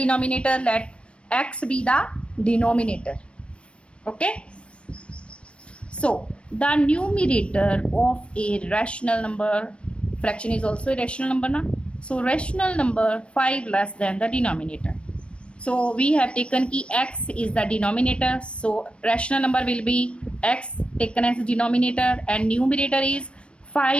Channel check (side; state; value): right; late; 0.059 ms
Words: let x be the denominator. Okay, so the numerator of a rational number, fraction is also a rational number na? So rational number 5 less than the denominator. So we have taken ki x is the denominator, so rational number will be x taken as denominator and numerator is